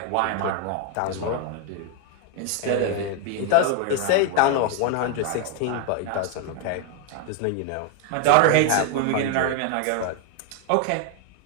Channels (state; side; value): different; both; correlation 0.01